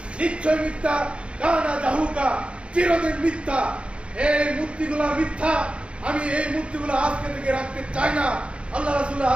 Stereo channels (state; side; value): late; left; 0.059 ms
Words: নিশ্চয় মিথ্যা, কানা জাহুকা, চিরদিন মিথ্যা। এই মূর্তিগুলা মিথ্যা, আমি এই মূর্তিগুলো আজকে থেকে রাখতে চাই না। আল্লাহ রাসূলের